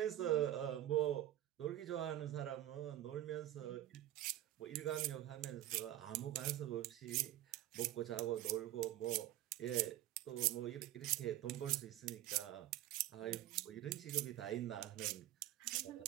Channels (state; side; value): quieter; left; 13.6 dB